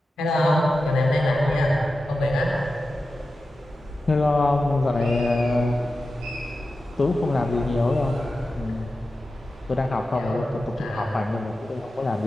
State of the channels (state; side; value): normal; both; correlation 0.92